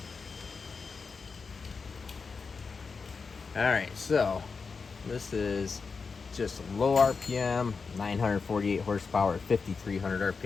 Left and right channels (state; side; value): quieter; right; 4.9 dB